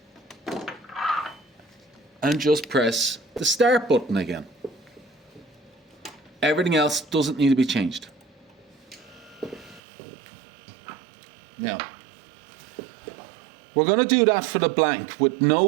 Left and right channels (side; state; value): left; drops out; at 9.8 s